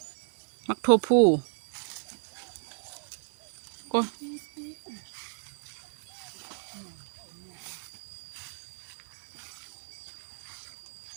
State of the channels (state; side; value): silent; left; digital silence